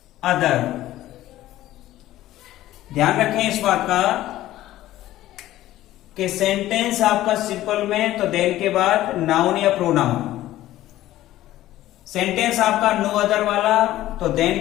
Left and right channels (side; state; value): right; quieter; 14.7 dB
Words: other. ध्यान रखें इस बात का कि सेंटेंस आपका सिंपल में तो देन के बाद नाउन या प्रोनाउन, सेंटेंस आपका नो अदर वाला तो